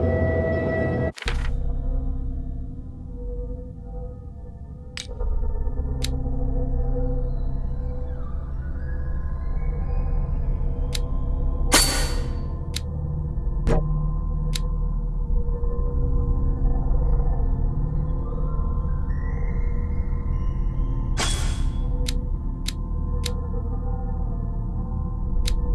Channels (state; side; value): identical; both; correlation 1.00